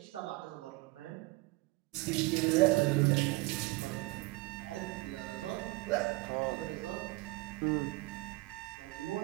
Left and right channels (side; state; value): left; quieter; 22.6 dB